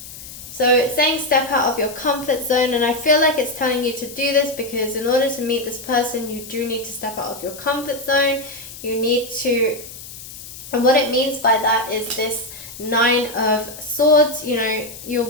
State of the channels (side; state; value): left; noise; hiss, 14 dB below the sound